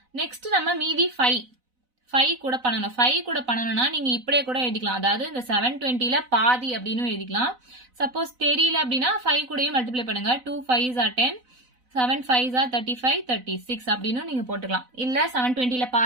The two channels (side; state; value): left; late; 4.0 ms